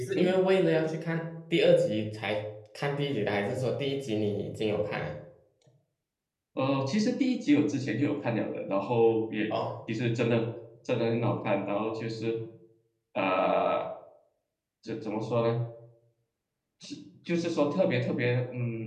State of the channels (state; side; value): identical; both; correlation 1.00